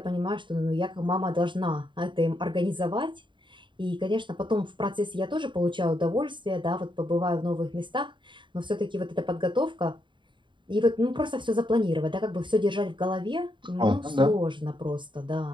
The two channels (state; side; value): late; left; 0.23 ms